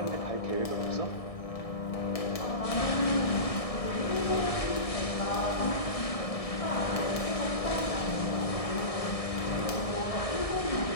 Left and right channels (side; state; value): right; late; 1.7 ms